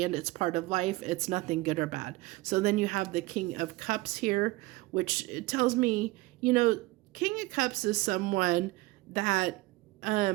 it's part of life. It's nothing good or bad. So then you have the King of Cups here, which tells me, King of Cups is someone that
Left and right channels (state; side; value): quieter; left; 20.8 dB